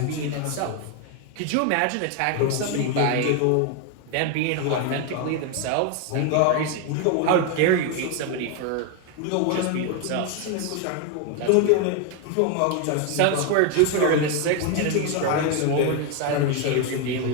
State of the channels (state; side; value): different; both; correlation 0.01